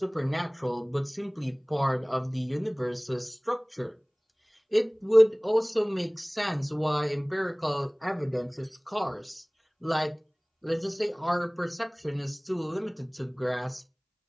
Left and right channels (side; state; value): both; identical; correlation 1.00